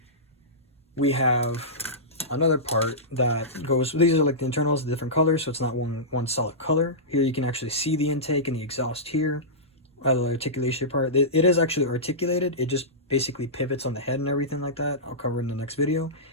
we have another part that goes, these are like the internals, the different colors, so it's not one solid color. Here you can actually see the intake and the exhaust here. The articulation part, it is actually articulated. It just basically pivots on the head and everything like that. I'll cover in the next video.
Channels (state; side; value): normal; both; correlation -0.16